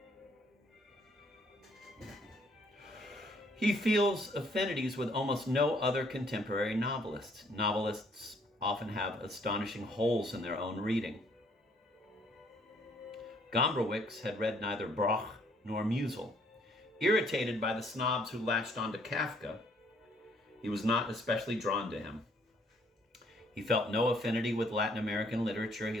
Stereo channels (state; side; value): normal; both; correlation 0.64